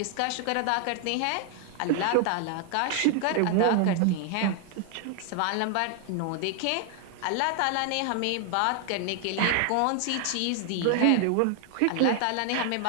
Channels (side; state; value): both; different; correlation 0.00